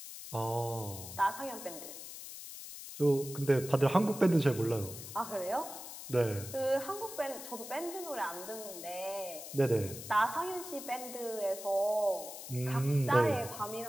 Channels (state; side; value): noise; left; hiss, 11 dB below the sound